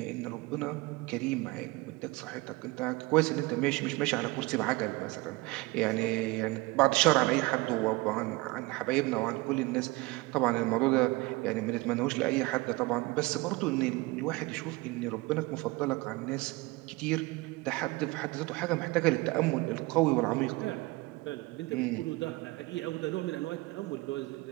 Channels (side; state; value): left; quieter; 22.5 dB